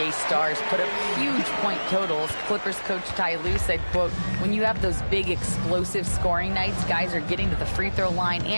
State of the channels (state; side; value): inverted; both; correlation -1.00